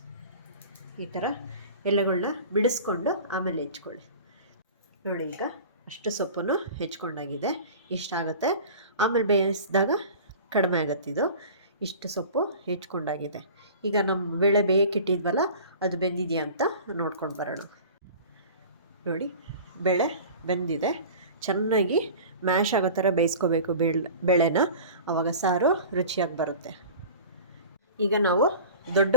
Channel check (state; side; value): inverted; both; correlation -0.39